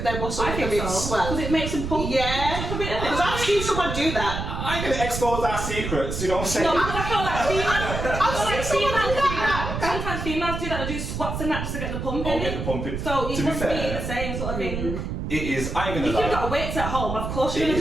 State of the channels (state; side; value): noise; right; rumble, 4 dB below the sound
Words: their muscles a bit swell? Because it makes them pull. Yeah. Because I've seen someone do that. I ain't gonna expose our secrets, you know what I'm saying? No, I feel like females do that. Sometimes females do that, they do squats and that just to get the pump in. Get the pump in. So it must be the same sort of thing. It is, I ain't gonna lie. If you've got weights at home, of course you're